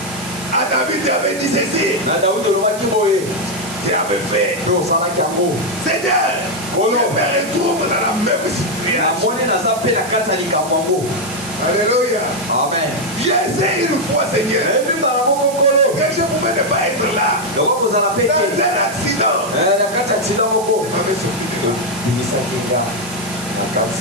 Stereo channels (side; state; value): right; noise; hiss, 13 dB below the sound